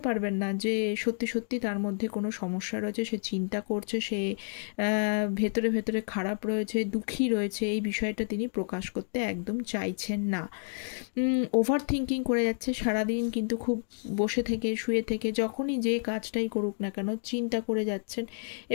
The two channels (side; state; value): right; silent; digital silence